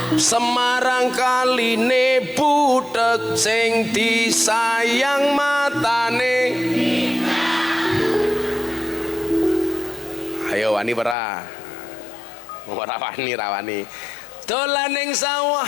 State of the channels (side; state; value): right; drops out; at 11.2 s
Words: Semarang kaline butek sing disayang matane. Ayo wani ora? Ora wani, ra wani. Dolan ning sawah